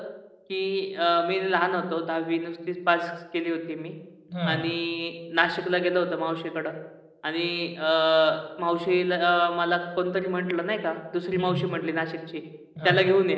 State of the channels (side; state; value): both; identical; correlation 1.00